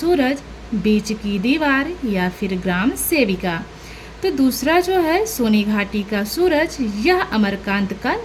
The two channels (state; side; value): identical; both; correlation 1.00